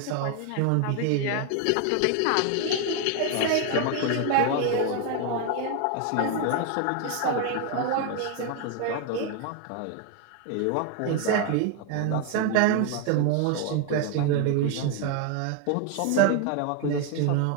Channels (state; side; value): different; both; correlation 0.01